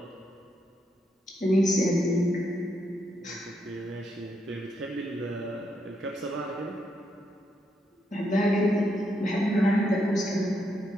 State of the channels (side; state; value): both; normal; correlation 0.79